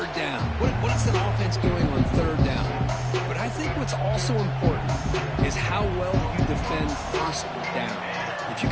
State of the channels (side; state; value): both; identical; correlation 1.00